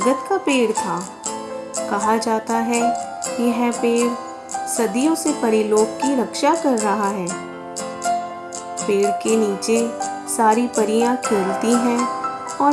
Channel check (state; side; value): identical; both; correlation 1.00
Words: का पेड़ था। कहा जाता है यह पेड़ सदियों से परीलोक की रक्षा कर रहा है। पेड़ के नीचे सारी परियां खेलती हैं